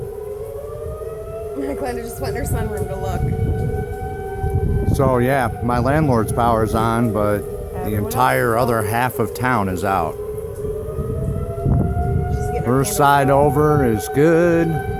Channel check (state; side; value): identical; both; correlation 1.00